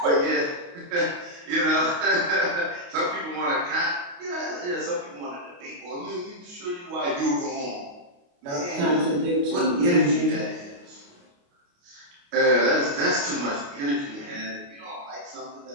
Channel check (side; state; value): left; late; 28 ms